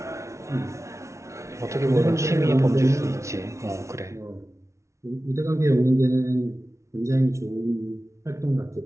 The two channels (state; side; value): late; left; 0.14 ms